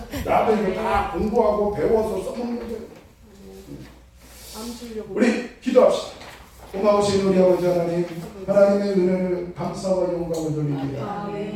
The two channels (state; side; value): identical; both; correlation 1.00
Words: 나도 이거 다 공부하고 배워서 써먹는 거예요. 우리 기도합시다. 고마우신 우리 아버지 하나님, 하나님의 은혜를 감사와 영광을 돌립니다.